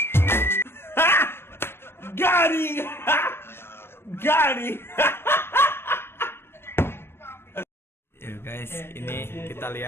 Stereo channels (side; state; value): right; late; 0.12 ms